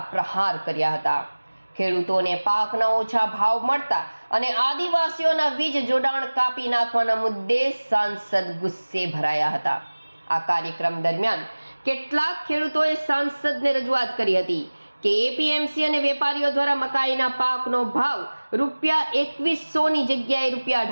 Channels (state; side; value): inverted; both; correlation -1.00